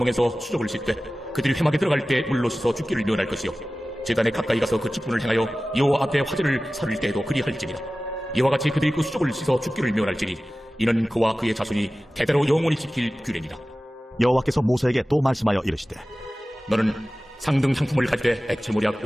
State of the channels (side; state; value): both; normal; correlation 0.96